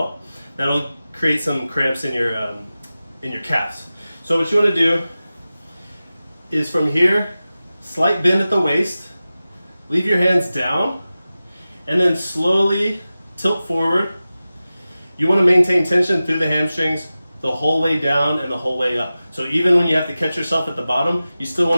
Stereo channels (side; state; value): both; inverted; correlation -0.95